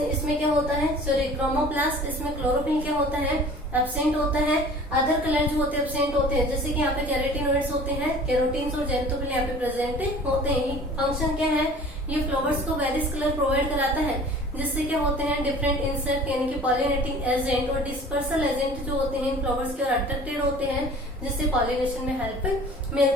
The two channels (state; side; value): normal; both; correlation 0.45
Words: क्या होता है? सॉरी, क्रोमोप्लास्ट, इसमें क्लोरोफिल क्या होता है? एब्सेंट होता है। अदर कलर जो होते हैं एब्सेंट होते हैं, जैसे कि यहाँ पे कैरोटिनॉइड्स होते हैं, कैरोटीन्स और जेंथोफिल यहाँ पे प्रेजेंट होते हैं। फंक्शन क्या है? ये फ्लावर्स को वेरियस कलर प्रोवाइड कराता है, जिससे क्या होते हैं? डिफरेंट इंसेक्ट यानी कि पॉलिनेटिंग एजेंट और डिस्पर्सल एजेंट जो होते हैं इन फ्लावर्स की ओर अट्रैक्टेड होते हैं, जिससे पॉलिनेशन में हेल्प